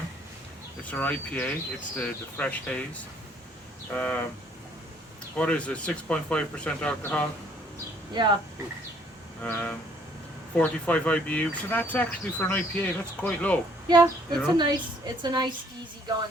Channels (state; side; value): normal; both; correlation 0.62